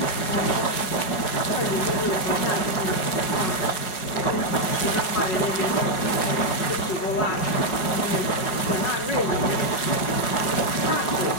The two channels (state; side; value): late; right; 5.4 ms